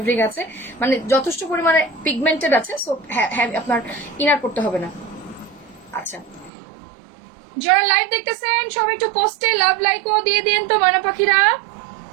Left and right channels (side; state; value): left; drops out; at 6.5 s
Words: আছে, মানে যথেষ্ট পরিমাণে পিগমেন্টেড আছে, সো আপনার ইনার পড়তে হবে না। আচ্ছা যারা লাইভ দেখতেছেন সবাই একটু পোস্টে লাভ লাইক ও দিয়ে দিন তো ময়না পাখিরা।